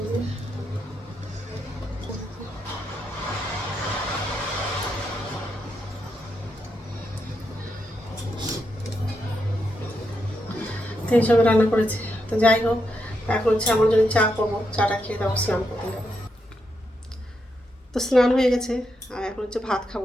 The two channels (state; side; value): normal; both; correlation 0.82